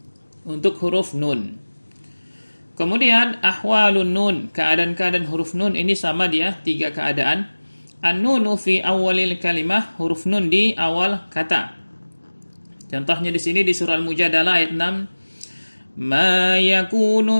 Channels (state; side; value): inverted; both; correlation -1.00